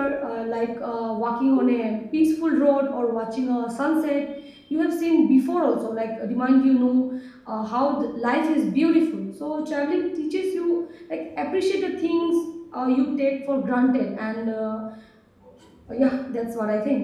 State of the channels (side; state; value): both; identical; correlation 1.00